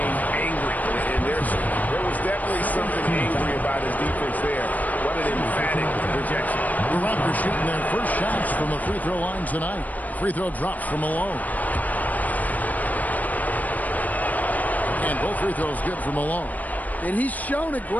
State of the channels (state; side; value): late; right; 0.078 ms